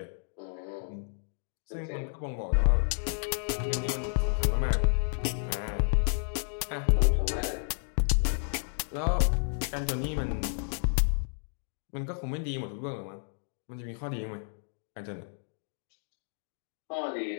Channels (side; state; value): right; silent; digital silence